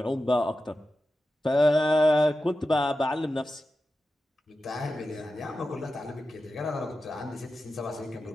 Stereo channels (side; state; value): both; normal; correlation 0.92